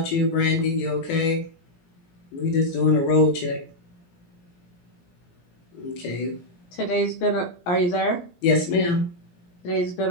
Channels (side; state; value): right; late; 17 ms